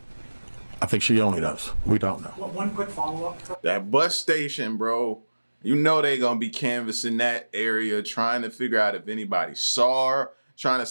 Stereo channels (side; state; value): both; inverted; correlation -1.00